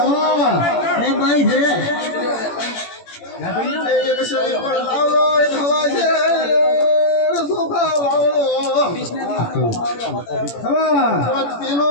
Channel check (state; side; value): late; right; 18 ms